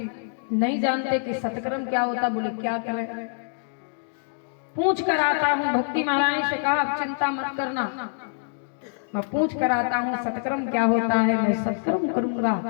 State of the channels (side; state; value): right; silent; digital silence